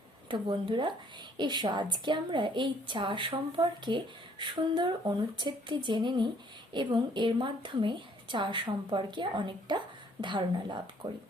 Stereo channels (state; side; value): normal; both; correlation 0.62